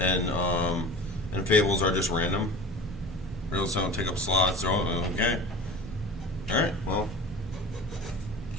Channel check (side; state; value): both; normal; correlation 0.35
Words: fables are just random. Riddles don't take up slots. So, okay. All right. Well,